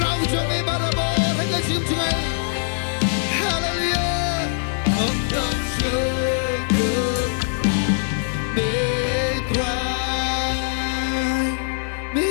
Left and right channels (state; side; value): silent; right; digital silence